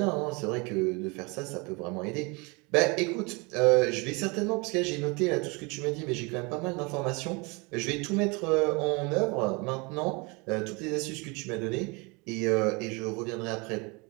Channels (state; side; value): quieter; left; 28.5 dB